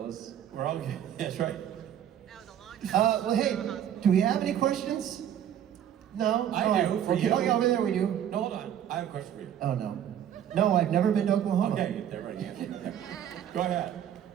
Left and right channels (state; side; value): quieter; left; 10.1 dB